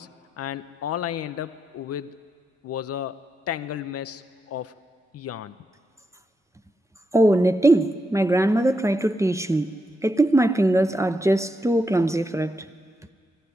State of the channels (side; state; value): both; normal; correlation 0.84